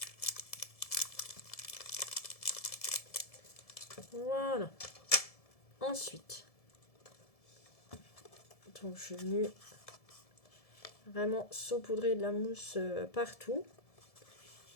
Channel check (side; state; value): right; late; 1.7 ms